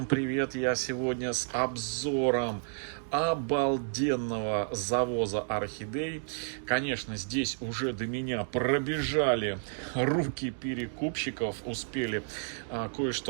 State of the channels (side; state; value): left; silent; digital silence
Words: привет! Я сегодня с обзором обалденного завоза орхидей. Конечно, здесь уже до меня пробежали руки перекупщиков, успели